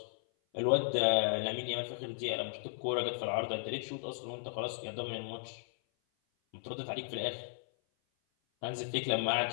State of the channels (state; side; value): silent; right; 54 dB below the other